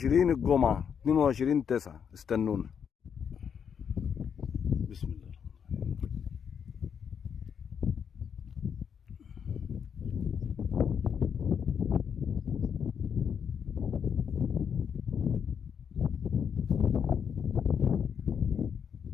الجمعه 22/9. استنونا. بسم الله.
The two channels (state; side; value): quieter; right; 7.4 dB